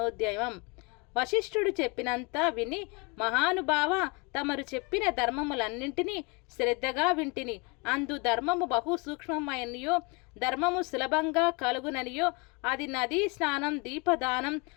వశిష్ఠుడు చెప్పినంత విని, మహానుభావ, తమరు చెప్పిన ధర్మములన్నింటినీ శ్రద్ధగా వింటిని. అందు ధర్మము బహు సూక్ష్మమైనయో, ధర్మము సులభంగా కలుగుననియో, అది నదీ స్నానం, దీపదానం,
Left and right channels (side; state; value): right; quieter; 29.8 dB